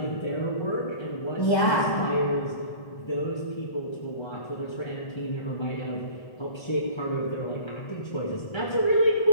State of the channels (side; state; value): right; late; 1.3 ms